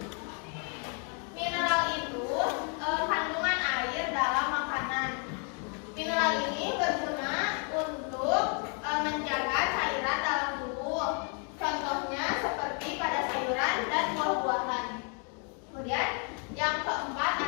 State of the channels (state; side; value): quieter; right; 38.7 dB